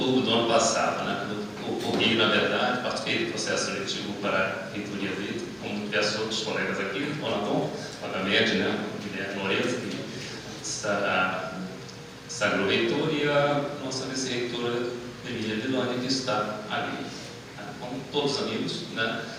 do ano passado, né? Ocorri, na verdade, participei do processo seletivo para a reitoria do ITA, como diversos outros colegas aqui, o Ronaldão, obviamente, né, o Guilherme Lourenço, que sagrou reitor, e a nossa vice-reitora Emília Villani, que está ali. Como todos amigos, né?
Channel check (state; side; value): identical; both; correlation 1.00